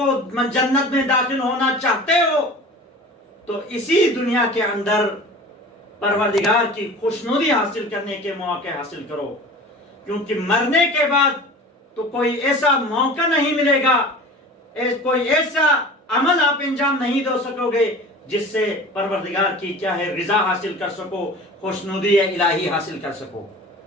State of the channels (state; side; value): normal; both; correlation 0.39